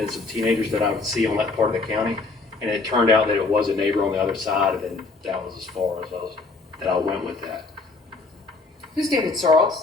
some teenagers that I would see on that part of the county. And it turned out that it was a neighbor on the other side, and that was as far as I went with that. Who's David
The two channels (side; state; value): right; quieter; 3.8 dB